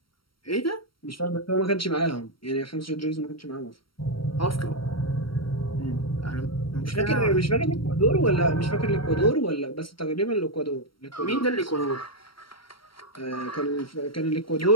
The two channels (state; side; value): late; right; 0.74 ms